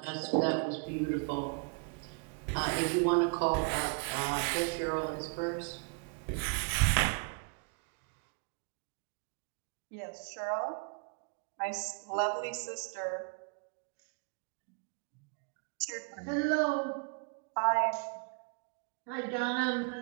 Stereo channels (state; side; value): quieter; left; 36.3 dB